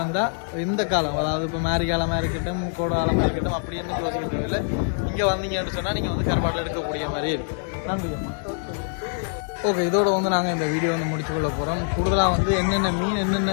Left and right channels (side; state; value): right; silent; digital silence